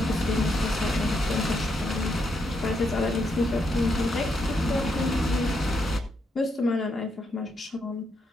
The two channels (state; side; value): normal; both; correlation 0.79